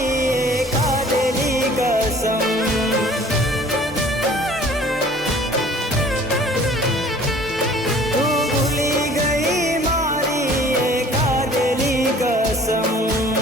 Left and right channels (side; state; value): both; normal; correlation 0.51